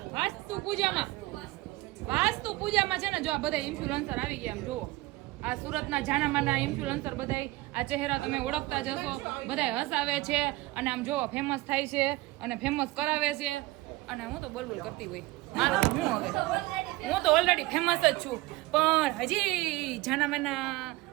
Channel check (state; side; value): quieter; left; 19.9 dB